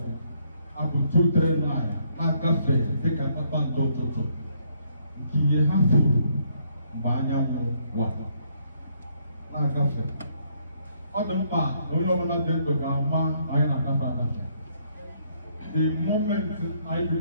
Apple 239. Na cafe, take a papa toto. Kiye hafu, banyamu wa. Na cafe. ọ dị mkpa na onye ọbụla dị ndụ ga-ama na anyị na-agafe agafe. The moment anyị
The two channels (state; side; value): inverted; both; correlation -0.70